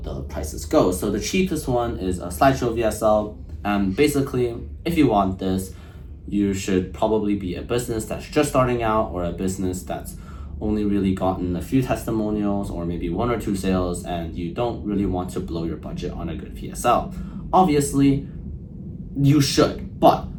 prices go. So the cheapest one is a slideshow VSL, and basically, if you want this, you should probably be a business that's just starting out or a business that's only really gotten a few testimonials or maybe 1 or 2 sales, and you don't really want to blow your budget on a good VSL. Obviously, you should, but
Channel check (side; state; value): both; identical; correlation 1.00